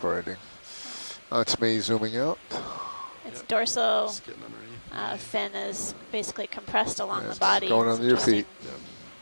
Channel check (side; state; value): both; inverted; correlation -1.00